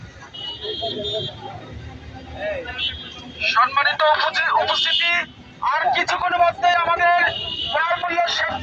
সম্মানিত উপস্থিতি, আর কিছুক্ষণ মধ্যে আমাদের ক্রয় মূল্যের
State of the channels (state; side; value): identical; both; correlation 1.00